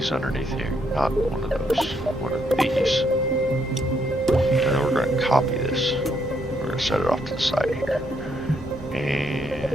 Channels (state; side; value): normal; both; correlation 0.74